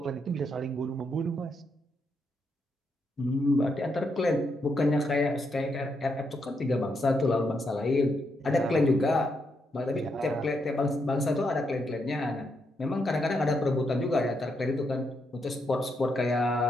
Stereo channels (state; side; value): normal; both; correlation 0.80